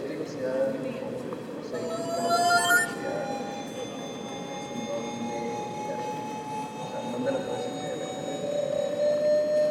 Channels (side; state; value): both; identical; correlation 1.00